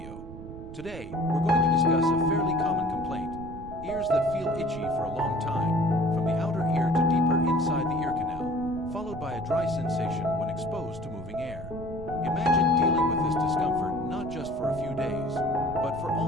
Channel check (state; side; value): noise; right; rumble, 13 dB below the sound